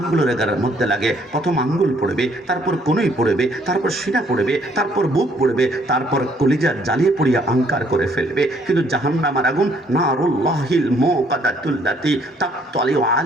মধ্যে লাগে, প্রথম আঙ্গুল পড়বে, তারপর কনুই পড়বে, তারপর সিনা পড়বে, তারপর বুক পড়বে, তারপর কলিজা জ্বালিয়ে পড়িয়া আঙ্কার করে ফেলবে। কিন্তু জাহান্নামের আগুন নারুল্লাহিল মুকাদ্দাতুল্লাতি তাকতালিউ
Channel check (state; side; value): normal; both; correlation 0.65